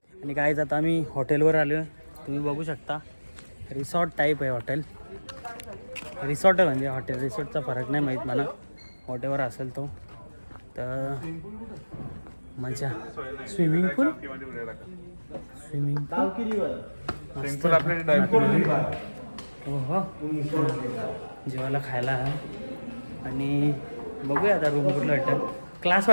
आणि काय आता आम्ही हॉटेलवर आलो. तुम्ही बघू शकता रिसॉर्ट टाईप आहे हॉटेल. रिसॉर्ट आहे म्हणजे हॉटेल रिसॉर्टचा फरक नाही माहीत मला. हॉटेलवर असेल तो तर मजा. स्विमिंग पूल हो जेवायला खायला आहे. आणि बघूया आता रूम कुठलं वाटतं. क्लास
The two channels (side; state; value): both; inverted; correlation -1.00